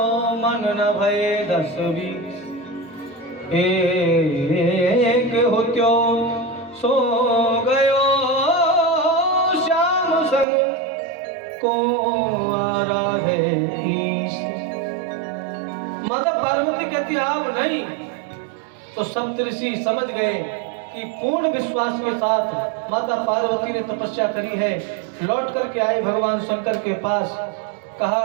मन न भये 10-20, एक होत्यो सो गयो श्याम संग को आराधे ईश। माता पार्वती कहती अब नहीं। तो सप्तऋषि समझ गए कि पूर्ण विश्वास के साथ माता पार्वती ने तपस्या करी है। लौट करके आए भगवान शंकर के पास,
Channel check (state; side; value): drops out; left; at 10.5 s